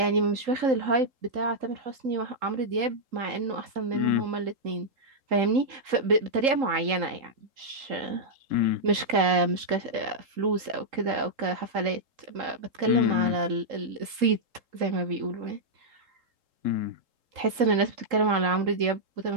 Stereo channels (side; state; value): left; late; 3.8 ms